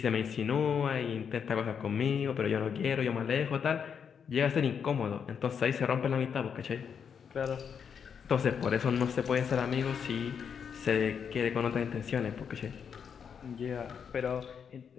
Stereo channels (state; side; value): quieter; right; 7.1 dB